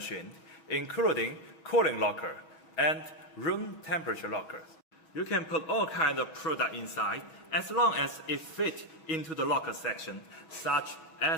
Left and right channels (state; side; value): late; right; 6.2 ms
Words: including cooling locker and room temperature lockers. You can put all kinds of product inside as long as it fits into the locker section, such